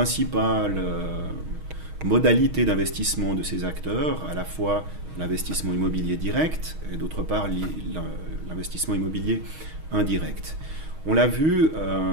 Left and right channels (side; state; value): left; late; 6.4 ms